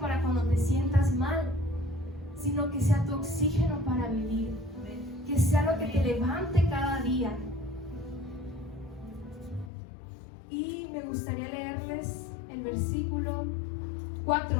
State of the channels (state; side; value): drops out; right; at 9.7 s